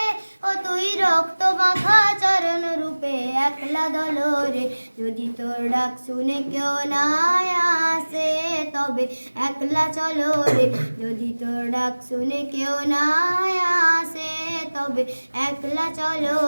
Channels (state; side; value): inverted; both; correlation -1.00